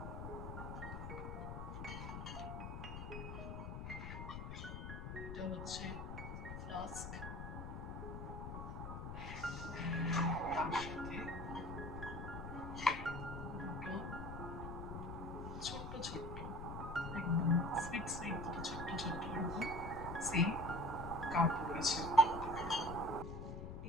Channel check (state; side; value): noise; left; rumble, 6 dB below the sound